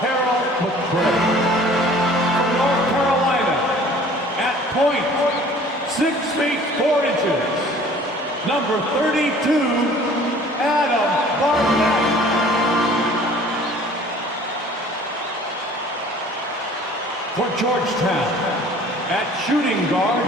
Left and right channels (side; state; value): both; normal; correlation 0.50